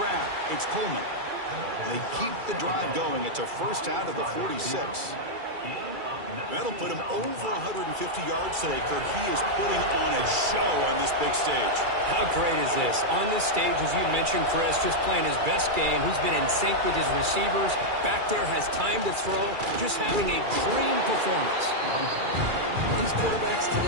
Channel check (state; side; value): late; left; 2.3 ms